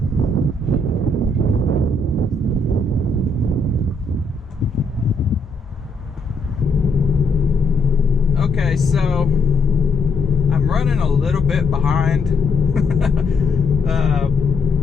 Okay, so I'm running a little bit behind.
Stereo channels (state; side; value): quieter; right; 3.1 dB